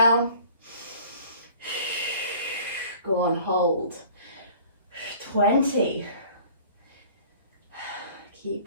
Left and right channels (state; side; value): inverted; both; correlation -0.48